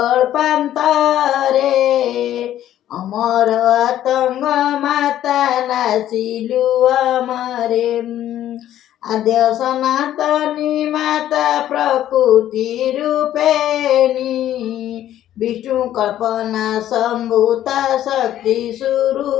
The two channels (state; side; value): quieter; right; 12.1 dB